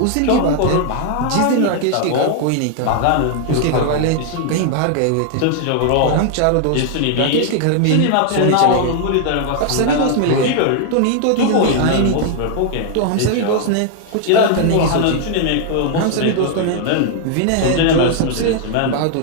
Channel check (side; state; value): both; different; correlation 0.00